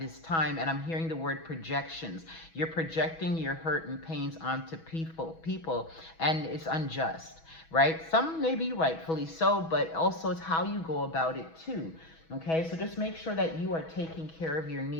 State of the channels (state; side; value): late; right; 6.2 ms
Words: time. And I'm hearing the word projections. You're projecting your hurt and pains onto people, and it's unjust. Right? Some may be rightfully so, but also it's how you go about it too. Okay, so just make sure that you are taking care of your